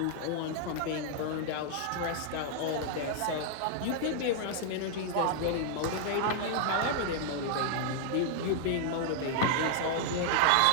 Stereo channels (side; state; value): both; different; correlation -0.01